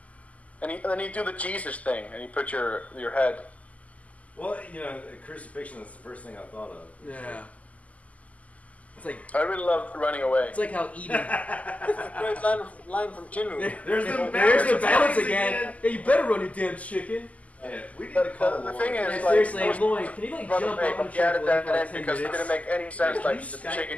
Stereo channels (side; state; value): right; late; 0.072 ms